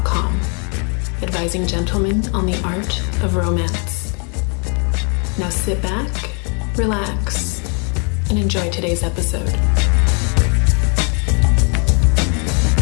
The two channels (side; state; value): right; quieter; 37.5 dB